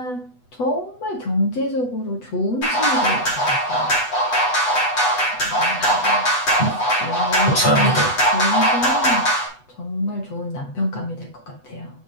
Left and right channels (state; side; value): late; right; 8.1 ms